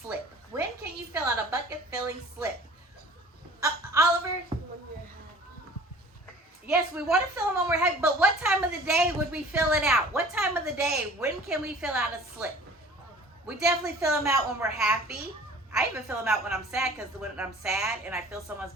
When can you fill out a bucket filling slip? Oliver? Yes, we want to fill them when we're happy, but what time of the day would we fill it out? What time of the day, when can we fill out a slip? We definitely fill them out when we're happy. I even fill them out when I'm sad, because when I'm sad and I fill someone's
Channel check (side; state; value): both; normal; correlation 0.47